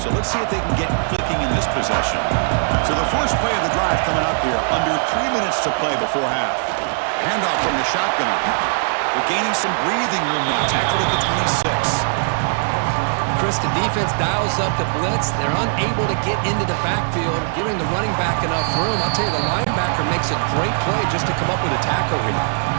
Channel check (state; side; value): silent; left; digital silence